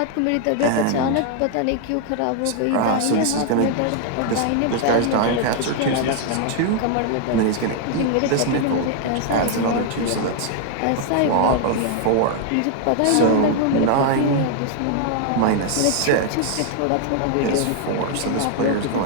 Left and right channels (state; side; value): different; both; correlation 0.00